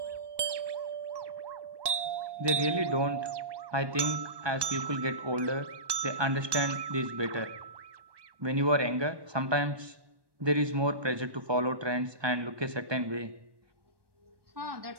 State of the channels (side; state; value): left; late; 1.1 ms